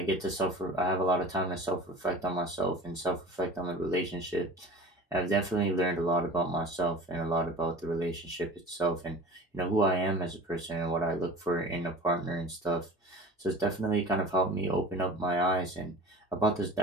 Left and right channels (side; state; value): both; normal; correlation 0.39